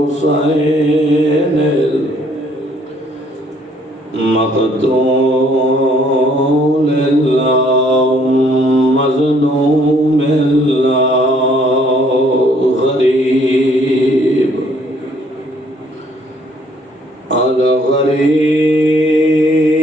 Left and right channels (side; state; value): both; normal; correlation 0.63